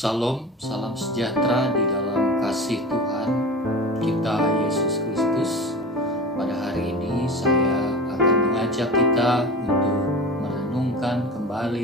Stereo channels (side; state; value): both; normal; correlation 0.33